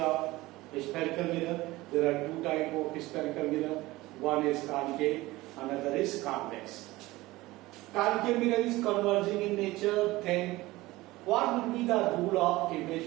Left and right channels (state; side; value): quieter; left; 19.2 dB